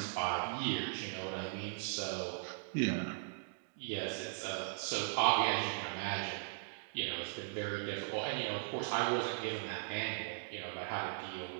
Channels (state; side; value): silent; left; digital silence